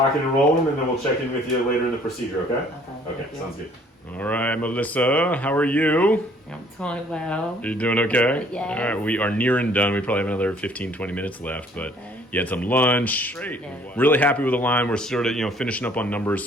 and rolling, and then we'll check in with you later in the procedure, okay? Okay, sounds good. All right, Melissa, how are you? I'm doing well. You doing okay? Yes. All right, we are near and done. We probably have another 15, 20 minutes left, but you had some lunch. Great. Yeah. Really happy with the line. We're sort of, finishing up on numbers,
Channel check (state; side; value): normal; both; correlation 0.58